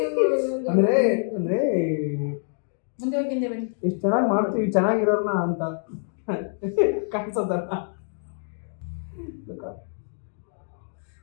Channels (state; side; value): silent; right; digital silence